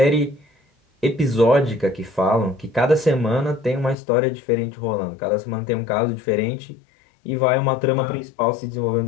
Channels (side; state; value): right; drops out; at 4.0 s